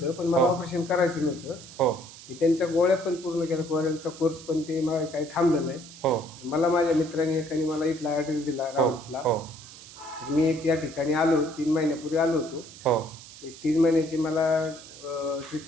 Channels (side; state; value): right; noise; hiss, 17 dB below the sound